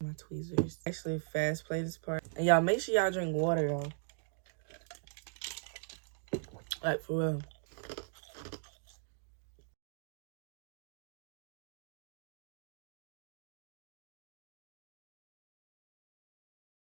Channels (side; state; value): left; silent; digital silence